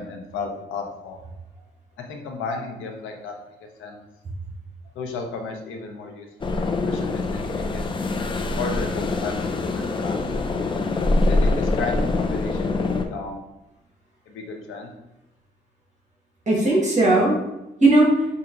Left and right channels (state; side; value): normal; both; correlation 0.71